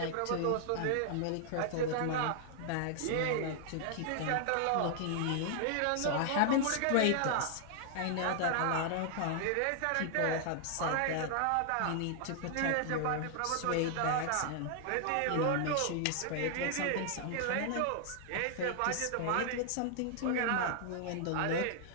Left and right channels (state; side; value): different; both; correlation 0.00